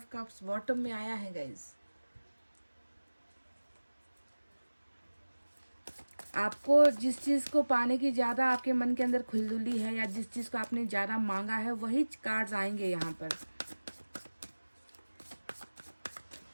कप्स बॉटम में आया है गाइज। आपको जिस चीज़ को पाने की ज़्यादा आपके मन के अंदर खुलदुली है, या जिस चीज़ को आपने ज़्यादा मांगा है, वही कार्ड्स आएंगे यहाँ पर।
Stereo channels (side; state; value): both; inverted; correlation -1.00